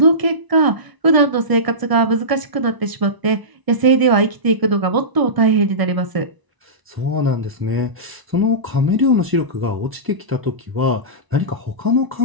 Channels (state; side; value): late; left; 1.0 ms